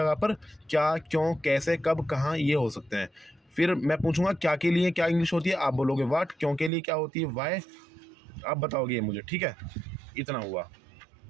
पर क्या, क्यों, कैसे, कब, कहाँ, ये हो सकते हैं। फिर मैं पूछूंगा क्या के लिए क्या इंग्लिश होती है, आप बोलोगे व्हाट, क्यों के लिए क्या होती है वाई, आप बताओगे ये मुझे। ठीक है, इतना हुआ।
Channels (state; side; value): drops out; left; at 6.7 s